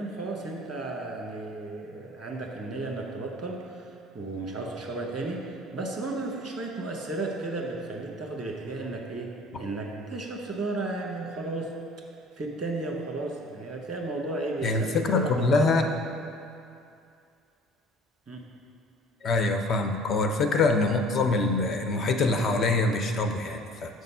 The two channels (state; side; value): normal; both; correlation 0.48